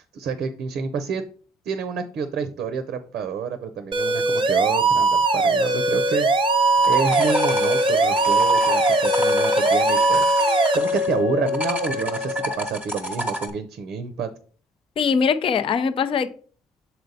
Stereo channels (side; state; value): both; normal; correlation 0.56